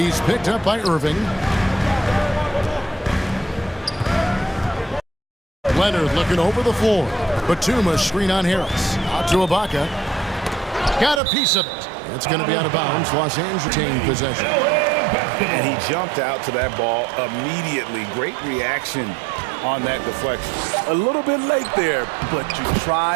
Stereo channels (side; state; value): left; drops out; at 11.2 s